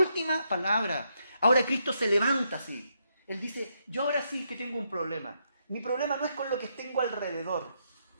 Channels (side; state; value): both; inverted; correlation -0.78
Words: palabra. Ahora Cristo se levanta así. Él dice, yo ahora sí que tengo un problema. Mi problema no es con lo que tengo alrededor.